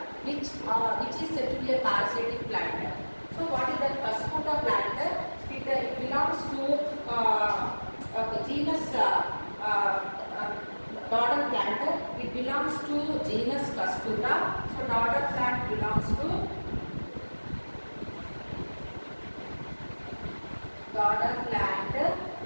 which is said to be a parasitic plant. So what is that Cascuta plant? It belongs to genus daughter plant. It belongs to genus Cascuta. So daughter plant belongs to daughter plant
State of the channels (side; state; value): both; inverted; correlation -1.00